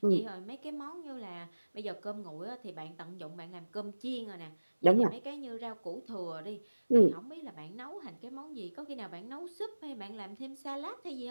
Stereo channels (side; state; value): both; inverted; correlation -1.00